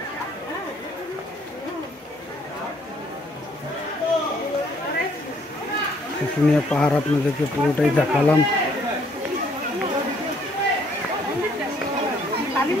শুশুনিয়া পাহাড় আপনাদেরকে পুরোটাই দেখালাম।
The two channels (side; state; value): both; normal; correlation 0.64